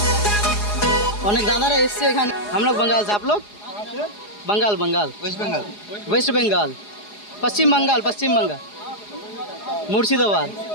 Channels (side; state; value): right; late; 4.8 ms